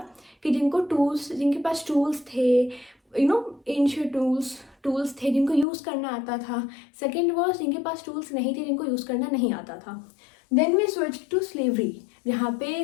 कि जिनके पास टूल्स थे, एंशियंट टूल्स थे जिनको यूज़ करना आता था। सेकेंड वॉज जिनके पास टूल्स नहीं थे, जिनको यूज़ करना नहीं आता था। Then we switch to slavery, जहाँ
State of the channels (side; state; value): right; drops out; at 5.7 s